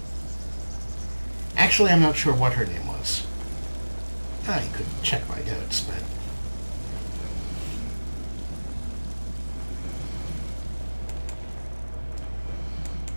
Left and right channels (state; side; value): inverted; both; correlation -1.00